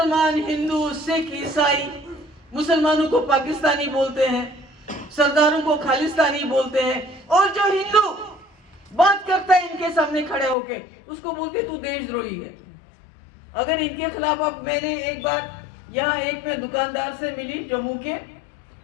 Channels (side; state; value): right; drops out; at 10.6 s